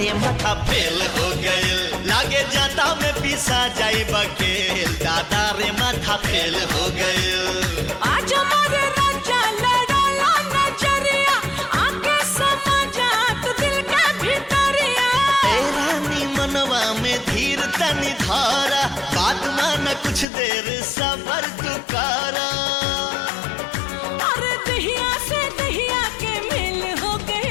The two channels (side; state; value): right; drops out; at 20.2 s